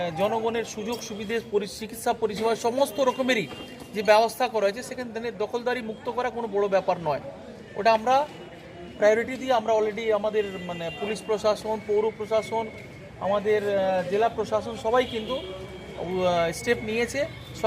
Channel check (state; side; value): identical; both; correlation 1.00